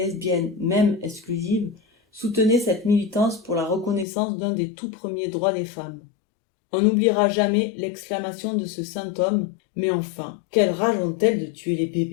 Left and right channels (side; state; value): right; drops out; at 4.0 s